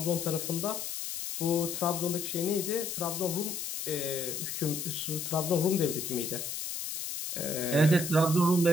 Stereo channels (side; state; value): left; noise; hiss, 5 dB below the sound